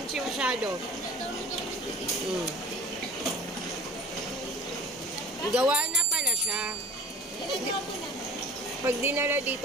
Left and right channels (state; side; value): normal; both; correlation 0.42